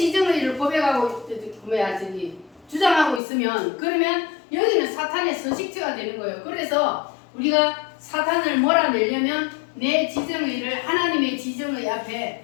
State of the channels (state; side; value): drops out; right; at 3.2 s